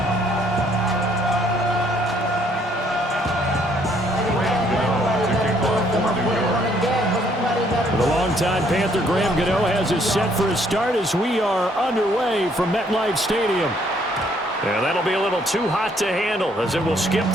The longtime Panther Graham Gano has us set for a start as we are underway from MetLife Stadium. Yeah, that'll be a little too hot to handle as it will skip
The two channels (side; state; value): both; normal; correlation 0.66